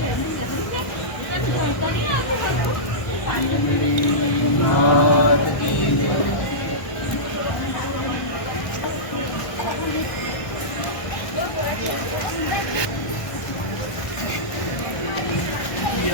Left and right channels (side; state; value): right; late; 1.1 ms